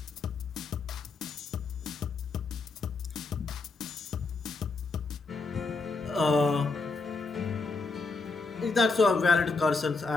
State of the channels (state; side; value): quieter; right; 4.0 dB